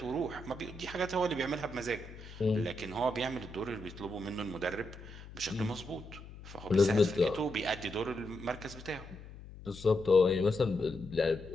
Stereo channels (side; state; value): left; noise; hum, 15 dB below the sound